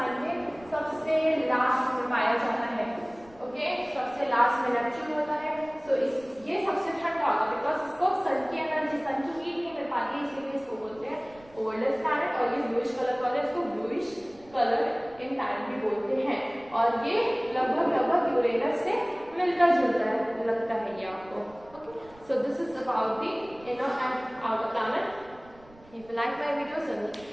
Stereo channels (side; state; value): right; noise; rumble, 25 dB below the sound